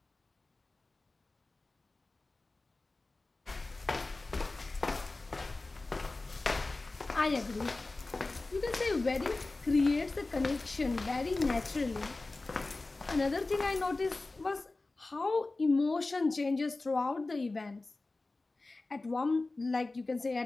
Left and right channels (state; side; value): quieter; right; 3.3 dB